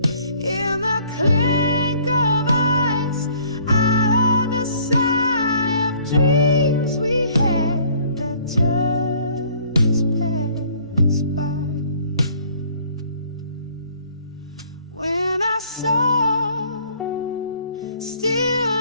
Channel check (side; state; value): both; inverted; correlation -0.58